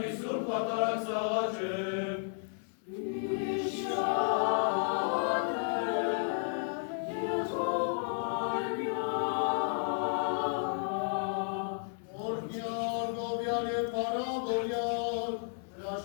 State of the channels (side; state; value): right; silent; 56 dB below the other